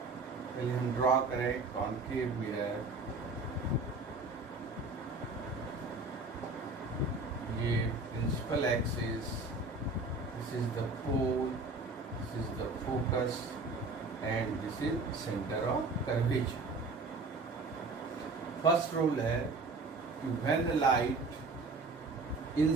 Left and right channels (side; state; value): left; quieter; 3.5 dB